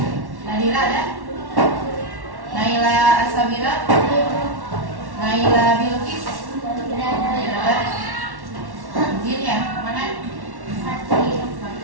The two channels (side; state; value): left; late; 1.1 ms